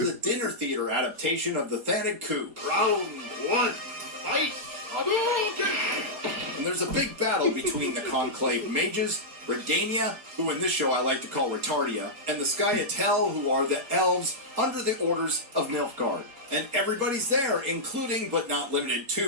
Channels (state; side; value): late; left; 4.2 ms